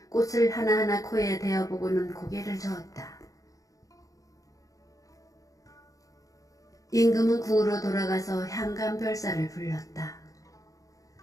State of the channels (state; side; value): late; right; 0.17 ms